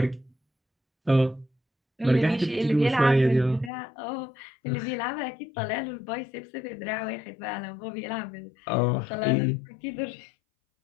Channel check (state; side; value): drops out; right; at 3.7 s